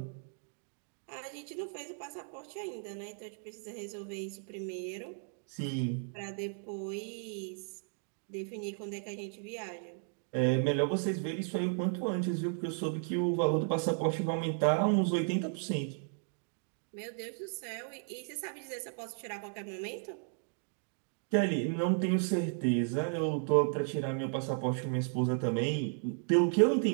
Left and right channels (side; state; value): left; silent; 55 dB below the other